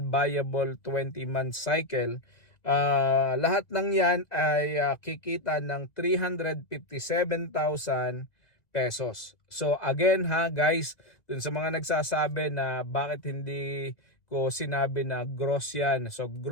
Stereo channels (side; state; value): right; late; 1.9 ms